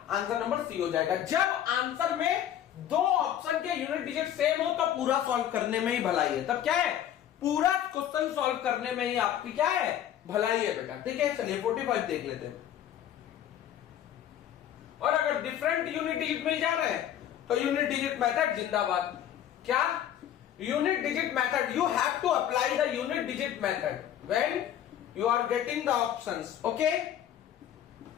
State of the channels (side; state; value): right; quieter; 10.7 dB